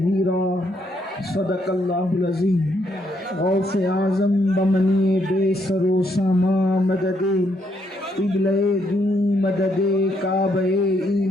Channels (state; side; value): normal; both; correlation 0.74